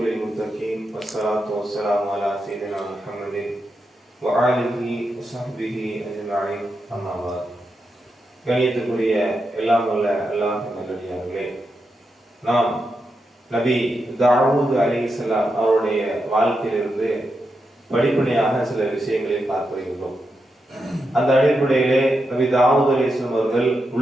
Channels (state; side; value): normal; both; correlation 0.86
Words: லில்-முத்தகீன் வஸ்ஸலாத்து வஸ்ஸலாமு அலா ஸய்யிதினா முஹம்மதின் வ ஆலிஹி வ ஸஹ்பிஹி அஜ்மஈன். அம்மா பஅத். கணியத்துக்குரிய எல்லாம் வல்ல அல்லாஹ்வின் நல்லடியார்களே, நாம் நபி தாவூத் அலைஹிஸ்ஸலாம் அவருடைய வாழ்க்கையிலிருந்து படிப்படியாக சில விஷயங்களை பார்த்து வருகிறோம். அந்த அடிப்படையிலே நபி தாவூத் அலைஹிஸ்ஸலாம் அவர்கள்